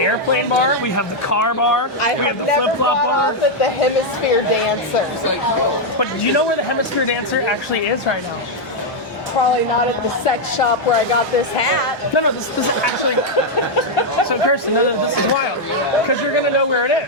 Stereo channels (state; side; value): normal; both; correlation -0.01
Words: bar, we have the car bar, I we have have the never flip-flop got bar. off at the Hemisphere Dancer. But do you know where the Hemisphere Dancer actually is right now? Probably not at the sex shop where I got this hat. No, this is actually. So Kirsten, no, this is wild because you're gonna know where it